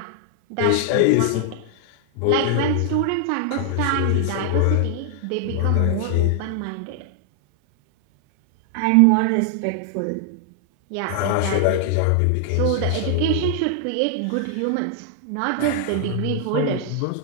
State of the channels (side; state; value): both; different; correlation 0.00